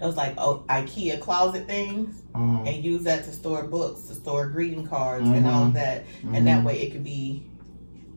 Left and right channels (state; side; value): inverted; both; correlation -1.00